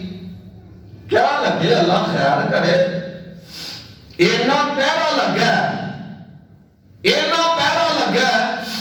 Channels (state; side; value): identical; both; correlation 1.00